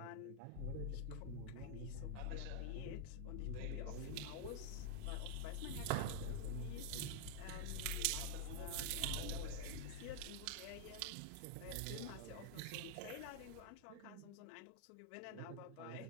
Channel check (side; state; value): both; different; correlation 0.00